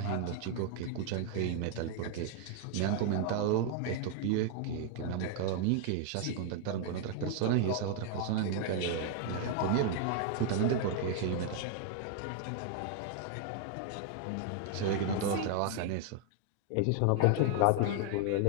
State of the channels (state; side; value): different; both; correlation 0.00